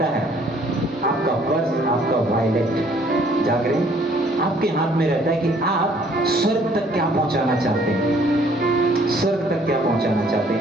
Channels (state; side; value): normal; both; correlation 0.60